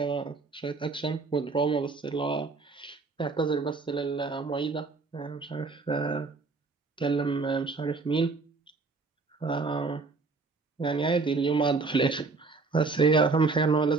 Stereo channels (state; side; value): quieter; left; 4.1 dB